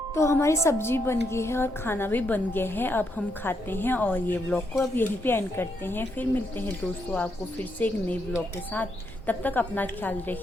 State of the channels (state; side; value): normal; both; correlation 0.78